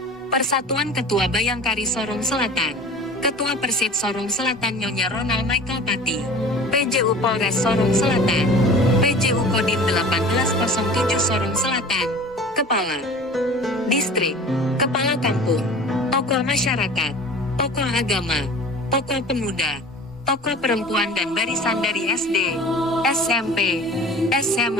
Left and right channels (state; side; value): normal; both; correlation 0.41